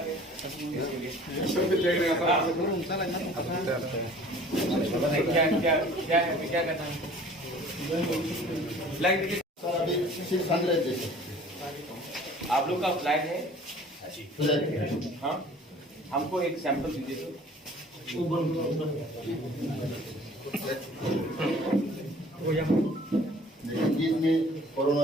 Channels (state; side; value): normal; both; correlation 0.50